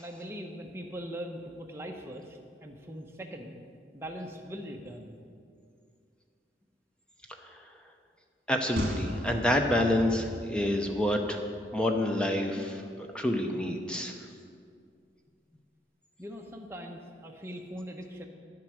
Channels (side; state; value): both; normal; correlation 0.72